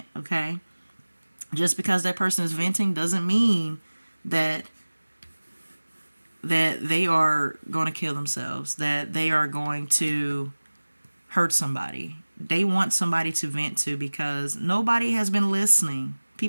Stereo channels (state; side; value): inverted; both; correlation -1.00